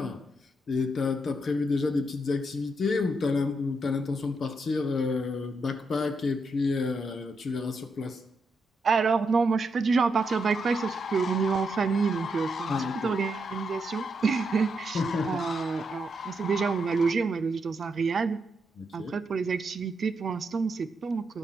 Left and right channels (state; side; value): normal; both; correlation 0.81